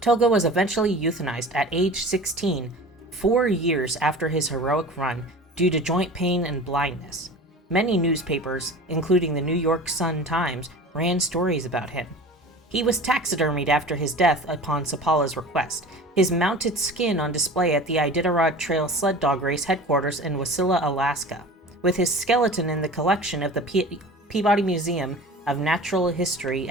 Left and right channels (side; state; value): both; normal; correlation 0.38